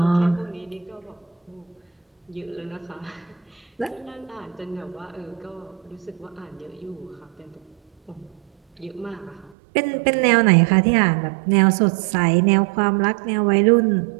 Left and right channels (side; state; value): left; drops out; at 9.6 s